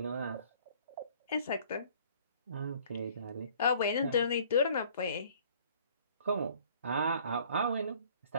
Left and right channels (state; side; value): inverted; both; correlation -0.55